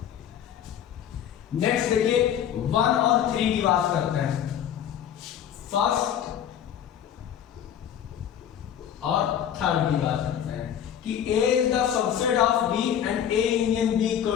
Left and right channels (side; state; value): right; quieter; 9.6 dB